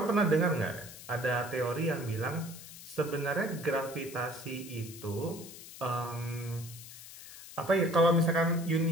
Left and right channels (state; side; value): noise; left; hiss, 15 dB below the sound